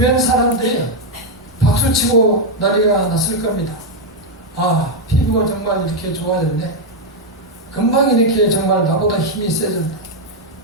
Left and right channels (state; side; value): normal; both; correlation 0.00